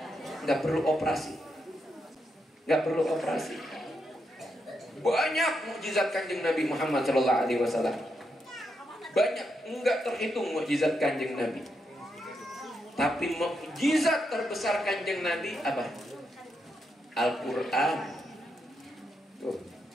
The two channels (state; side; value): normal; both; correlation 0.82